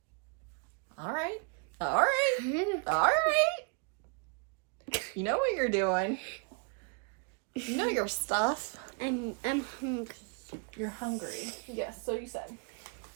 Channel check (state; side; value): quieter; left; 38.3 dB